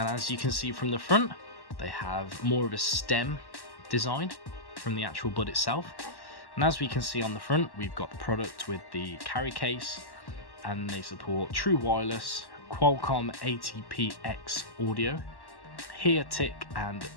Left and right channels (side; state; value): right; late; 1.1 ms